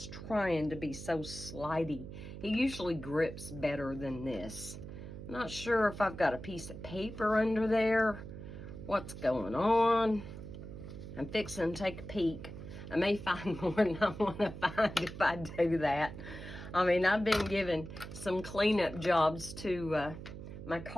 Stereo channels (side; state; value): right; noise; hum, 11 dB below the sound